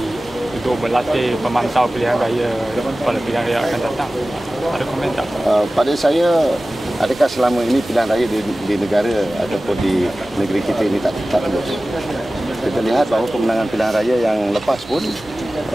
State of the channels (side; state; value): both; normal; correlation 0.96